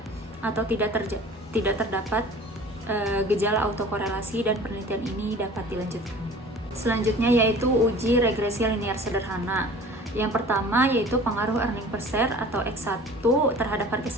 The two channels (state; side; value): normal; both; correlation 0.44